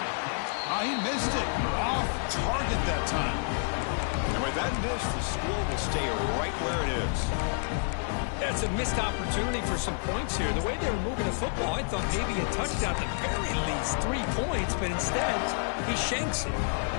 He missed it. Off target that time. And with that miss, the score will stay right where it is. That's a missed opportunity for some points here. The way they were moving the football, I thought maybe a touchdown, at the very least 3 points, but instead, he shanks it.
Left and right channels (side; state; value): right; silent; 57 dB below the other